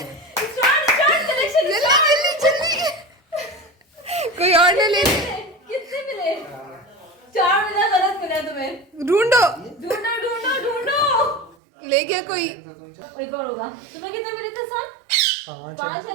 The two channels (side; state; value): left; drops out; at 11.6 s